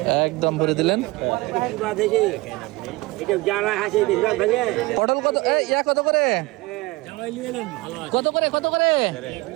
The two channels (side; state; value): left; quieter; 22.0 dB